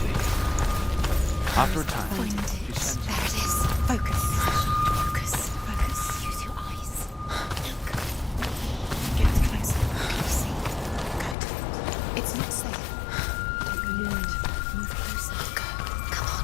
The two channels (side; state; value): right; drops out; at 11.4 s